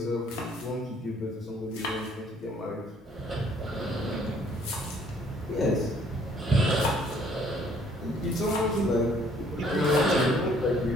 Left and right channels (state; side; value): normal; both; correlation 0.61